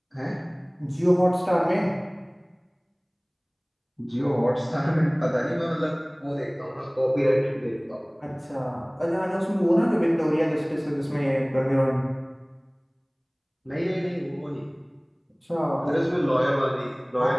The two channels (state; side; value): identical; both; correlation 1.00